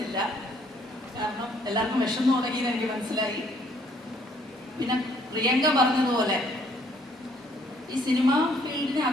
കാരണം എല്ലാവർക്കും വിഷമം തുടങ്ങിയെന്ന് എനിക്ക് മനസ്സിലായി. പിന്നെ പ്രിയങ്ക പറഞ്ഞതുപോലെ ഈ സിനിമ ഫീൽഡിന്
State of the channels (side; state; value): both; normal; correlation 0.64